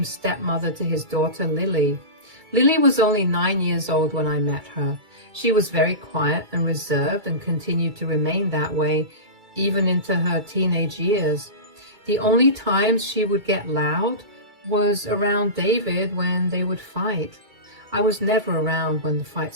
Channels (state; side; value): late; left; 2.3 ms